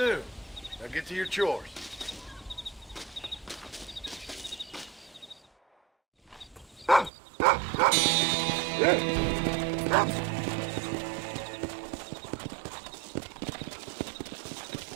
Now get to your chores.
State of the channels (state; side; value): drops out; left; at 7.1 s